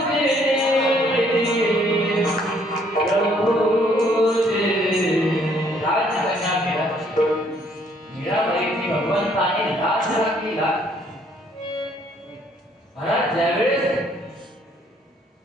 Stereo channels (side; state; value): both; normal; correlation 0.64